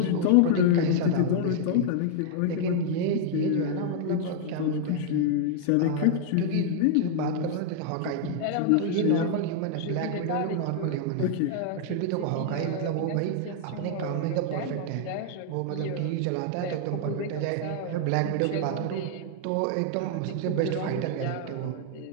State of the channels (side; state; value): both; different; correlation -0.01